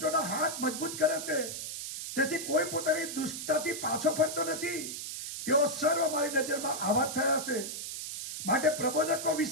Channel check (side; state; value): right; noise; hiss, 6 dB below the sound